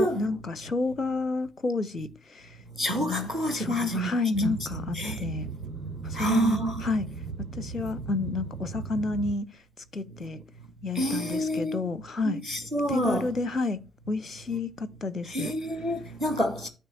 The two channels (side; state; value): both; normal; correlation 0.64